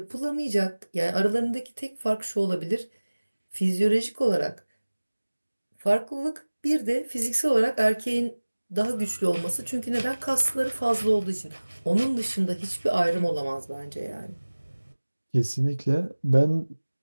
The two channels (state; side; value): inverted; both; correlation -1.00